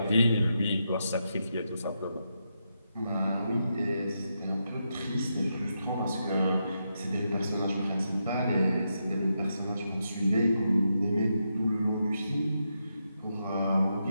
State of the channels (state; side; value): inverted; both; correlation -0.84